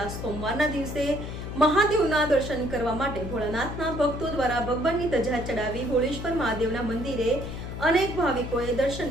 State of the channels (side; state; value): left; noise; hum, 7 dB below the sound